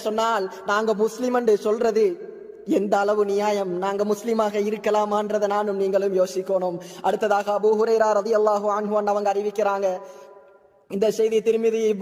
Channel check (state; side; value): identical; both; correlation 1.00